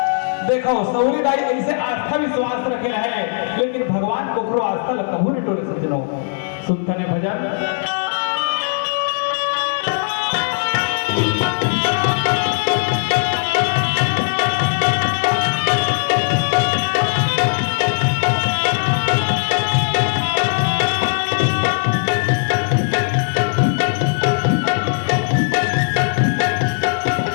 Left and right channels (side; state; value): right; silent; digital silence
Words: देखो सौरी दाई ऐसे आस्था विश्वास रखे रहे लेकिन भगवान को करो आस्था लगता हूं नहीं टोले सज्जनों सुनते ने भजन